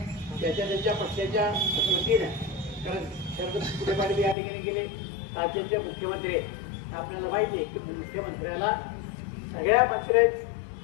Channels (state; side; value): drops out; right; at 4.4 s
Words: त्याच्या पक्षाच्या वतीनं, कारण शरद फुले पाटील या ठिकाणी गेले, राज्याचे मुख्यमंत्री आपल्याला माहिती आहे की मुख्यमंत्र्याला सगळ्या